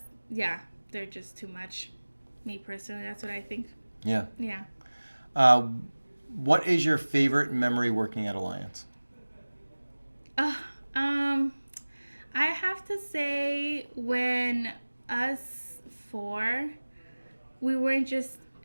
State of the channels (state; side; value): inverted; both; correlation -1.00